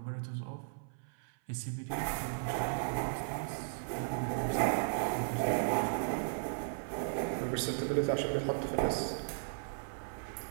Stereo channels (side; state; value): left; silent; 54 dB below the other